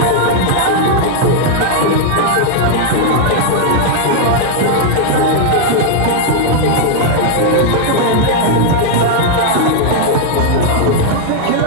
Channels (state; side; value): different; both; correlation -0.01